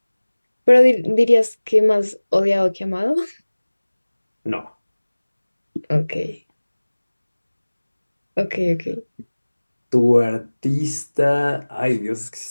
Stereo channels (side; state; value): both; inverted; correlation -1.00